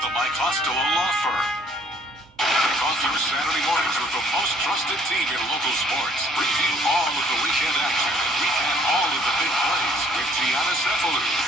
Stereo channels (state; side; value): normal; both; correlation 0.60